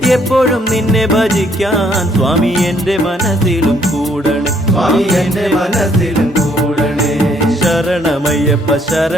എപ്പോഴും നിന്നെ ഭജിക്കാൻ സ്വാമി എന്റെ മനസ്സിലും കൂടണേ സ്വാമി എന്റെ മനസ്സിലും കൂടണേ ശരണമയ്യപ്പ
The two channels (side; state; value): both; normal; correlation 0.67